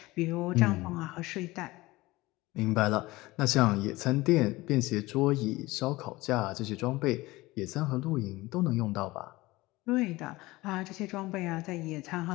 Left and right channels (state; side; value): quieter; right; 20.0 dB